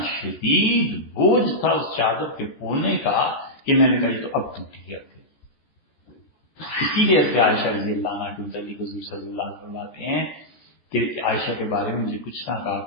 شدید بوجھ تھا اس چادر کے کونے کا کہ میں نے کہا یہ تو اب ٹوٹی. اب اسی لیے سے عائشہ رضی اللہ عنہ کے متعلق حضور صلی اللہ علیہ وسلم آتے ہیں کہ عائشہ کے بارے میں مجھے کچھ نہ کہا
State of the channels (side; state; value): right; late; 14 ms